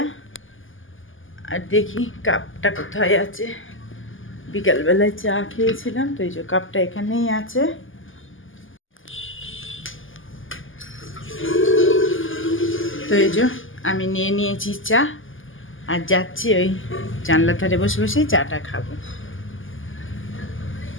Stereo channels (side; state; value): right; late; 0.58 ms